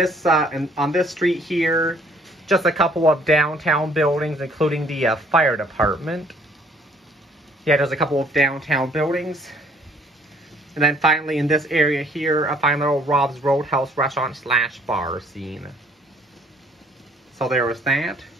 street here, just a couple of downtown buildings, including the fire department. Yeah, there's a couple of downtown buildings. And then finally in this area here, a fine little Rob's Roadhouse restaurant / bar scene. So there was that.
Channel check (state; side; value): normal; both; correlation 0.61